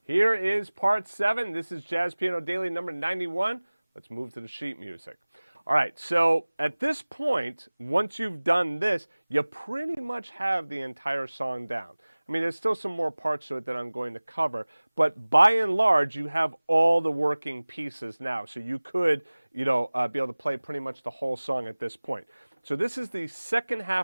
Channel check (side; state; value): both; inverted; correlation -1.00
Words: here is part 7. This is Jazz Piano Daily number 91. Let's move to the sheet music. All right, so at this point, once you've done this, you pretty much have the entire song down. I mean, there's still some more parts to it that I'm going to cover, but by and large, you have all the working pieces now. So you could, be able to play pretty much the whole song at this point. So this is the second